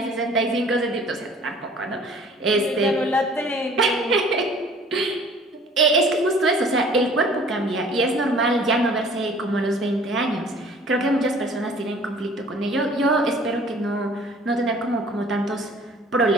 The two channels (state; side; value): normal; both; correlation 0.51